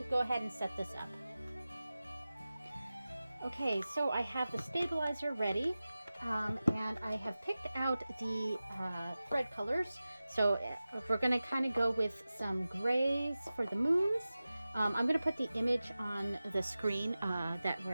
go ahead and set this up. Okay, so I have the stabilizer ready, and I have picked out the thread colors. So we're going to kind of go with some grays for the moons. I'm going to put the image on the screen that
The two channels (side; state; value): both; inverted; correlation -0.96